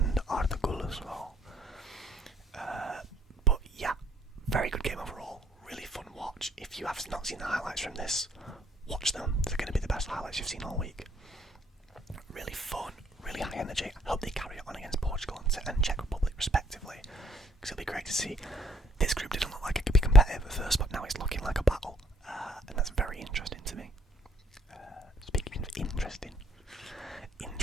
Arda Güler's goal. But yeah, very good game overall. Really fun watch. If you have not seen the highlights from this, watch them. They're going to be the best highlights you've seen all week. Really fun, really high energy. I hope they carry it on against Portugal and Czech Republic respectively, because it'll be great to see. This group didn't look like it could be competitive at first, but now it's looking like a battle, and that's very interesting to me. Speaking of interesting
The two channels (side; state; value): both; normal; correlation 0.65